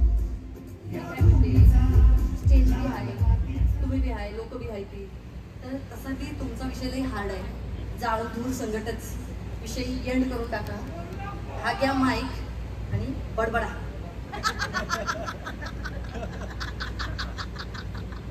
स्टेज बी आहे, तुम्ही बी आहे, लोक बी आहे ती, तर तसा बी तुमचा विषय लई हार्ड आहे. जाळ धूर संकटच विषय एंड करून टाका. हा घ्या माईक आणि बडबडा.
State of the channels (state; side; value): identical; both; correlation 1.00